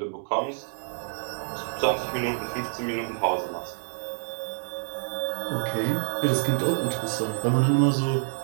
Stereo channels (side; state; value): left; silent; digital silence